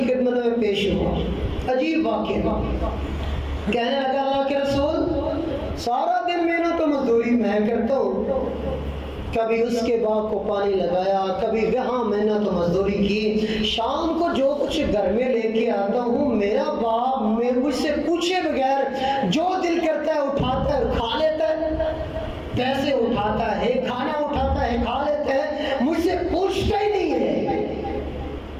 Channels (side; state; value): both; identical; correlation 1.00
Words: میں پیش ہوا، عجیب واقعہ، کہنے لگا اللہ کے رسول سارا دن محنت و مزدوری میں کرتا ہوں، کبھی اس کے باغ کو پانی لگایا، کبھی وہاں محنت و مزدوری کی، شام کو جو کچھ گھر میں لے کے آتا ہوں میرا باپ مجھ سے پوچھے بغیر جو دل کرتا ہے اٹھاتا ہے کھا لیتا ہے، پیسے اٹھاتا ہے، کھانا اٹھاتا ہے، کھا لیتا ہے، مجھ سے پوچھتا ہی نہیں ہے۔